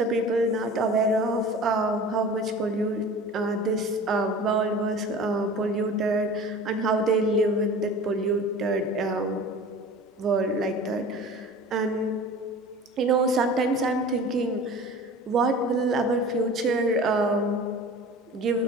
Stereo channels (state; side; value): normal; both; correlation 0.39